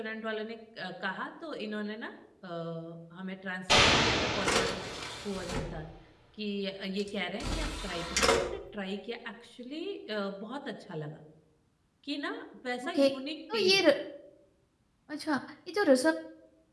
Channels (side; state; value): both; identical; correlation 1.00